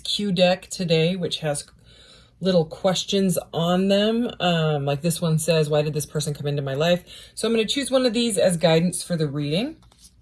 deck today, which has little questions on them. Like this one says, why did this person come into my life? So I'm going to choose one of these as guidance for the reading.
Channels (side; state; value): both; identical; correlation 1.00